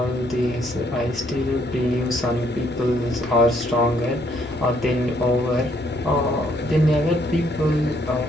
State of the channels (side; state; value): left; noise; hum, 23 dB below the sound